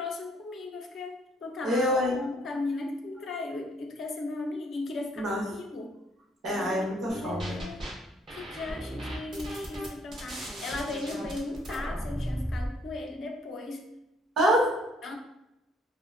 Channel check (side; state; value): both; normal; correlation 0.65